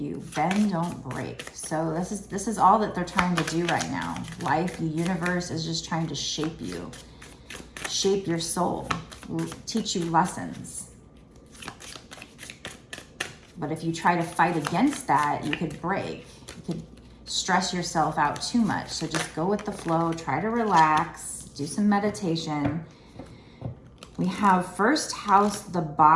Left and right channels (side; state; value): both; identical; correlation 1.00